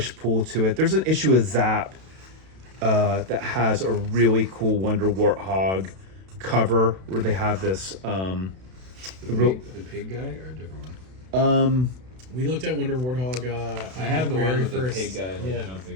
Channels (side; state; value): left; late; 32 ms